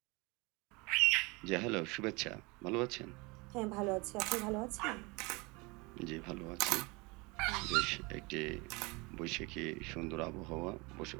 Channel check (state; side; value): quieter; left; 26.5 dB